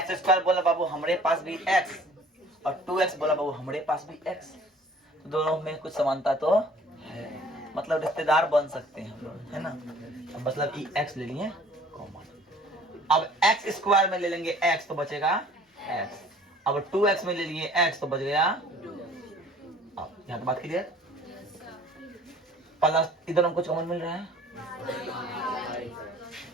स्क्वायर बोला बाबू हमारे पास भी x, और 2x बोला बाबू हमारे पास भी x, तो दोनों में कुछ समानता तो है, मतलब रिश्तेदार बन सकते हैं हम लोग, है ना? मतलब कि x ले लिए कॉमन। अब x स्क्वायर में ले लेंगे x तो बचेगा x, अब 2x में ले लिए x तो बच गया। अब यहाँ बात क्लियर? प्लस इधर हमको कॉमन मिल रहा है,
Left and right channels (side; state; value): both; normal; correlation 0.51